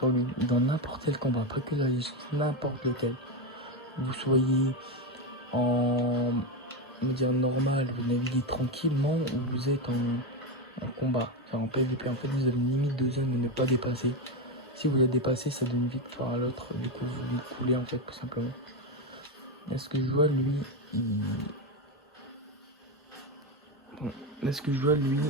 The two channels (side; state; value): both; normal; correlation 0.11